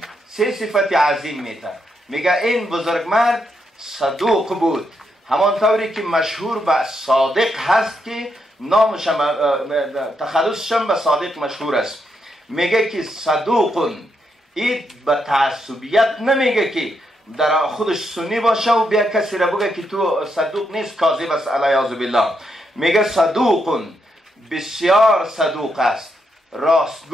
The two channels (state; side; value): normal; both; correlation 0.80